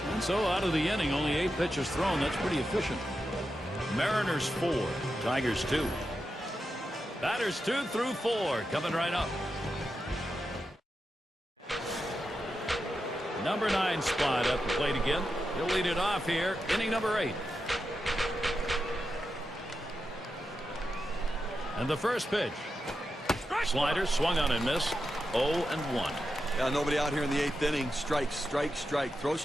And so out of the inning, only 8 pitches thrown. That's pretty efficient. Mariners 4, Tigers 2. Batters 2 through 4 coming right up. Number 9 spot at the plate again. He'll lead it off here, inning number 8. And the first pitch. Slider swung on and missed. 0-1. Yeah, nobody out here in the 8th inning. Strike, strike, strike. Throw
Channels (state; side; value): normal; both; correlation 0.88